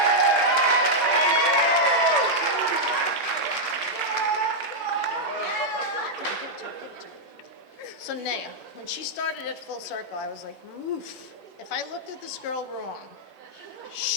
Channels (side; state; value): left; late; 13 ms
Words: So Naya, when she started at Full Circle, I was like, oof. If I looked at this girl wrong,